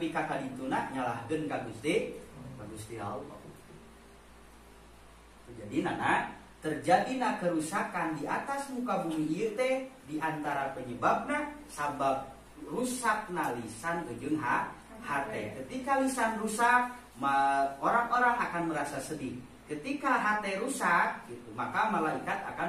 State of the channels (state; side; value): identical; both; correlation 1.00